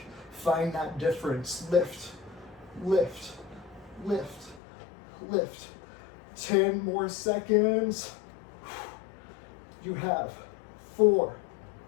Find that difference. Lift, lift, lift, lift. 10 more seconds. You have 4,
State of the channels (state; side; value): drops out; right; at 4.6 s